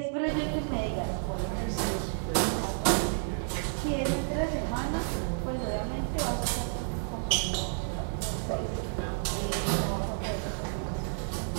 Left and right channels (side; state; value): left; silent; digital silence